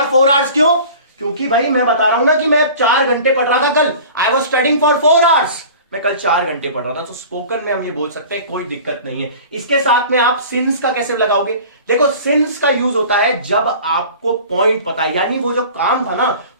4 आवर्स क्यों? क्योंकि भाई मैं बता रहा हूं ना कि मैं 4 घंटे पढ़ रहा था कल। I was studying for 4 hours, मैं कल 4 घंटे पढ़ रहा था। तो स्पोकन में हम ये बोल सकते हैं, कोई दिक्कत नहीं है। इसके साथ में आप सिंस का कैसे लगाओगे? देखो, सिंस का यूज होता है जब आपको पॉइंट पता है, यानी वो जो काम था ना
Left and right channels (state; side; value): inverted; both; correlation -0.42